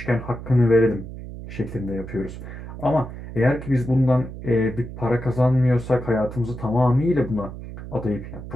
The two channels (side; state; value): right; noise; hum, 11 dB below the sound